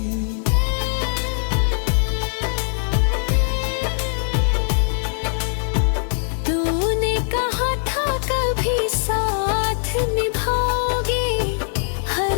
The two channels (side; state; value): right; silent; 65 dB below the other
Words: तूने कहा था कभी साथ निभाओगे,